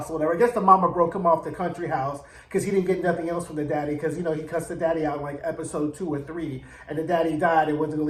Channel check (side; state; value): both; identical; correlation 1.00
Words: or whatever. I guess the mama broke him off the country house because he didn't get nothing else from the daddy because, he cussed the daddy out in like episode 2 or 3 and the daddy died and wasn't going